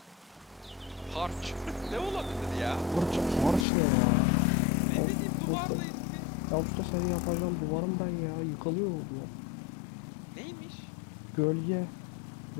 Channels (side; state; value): right; drops out; at 3.7 s